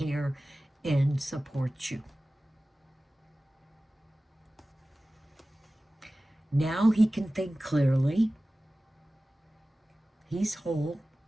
and support you. Now he can think clearly. He's whole.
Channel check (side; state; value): both; normal; correlation 0.96